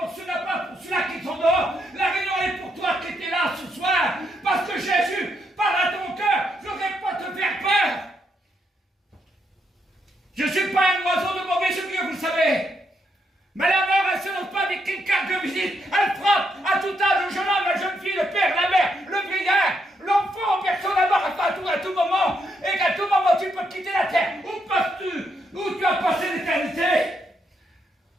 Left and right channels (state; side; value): normal; both; correlation 0.78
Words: ceux-là, pas pour ceux-là qui sont dehors. La réunion est pour toi qui étais là ce soir. Parce que Jésus parle à ton cœur. Je ne vais pas te faire peur. Je ne suis pas un oiseau de mauvais augure, vous le savez. Mais la mort, elle ne se donne pas avec une carte de visite. Elle frappe à tout âge, le jeune homme, la jeune fille, le père, la mère, le vieillard, l'enfant, personne la mort à tout moment. Et qu'à tout moment, tu peux quitter la terre. Où tu as passé l'éternité?